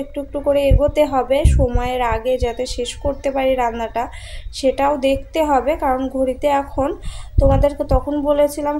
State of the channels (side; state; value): both; identical; correlation 1.00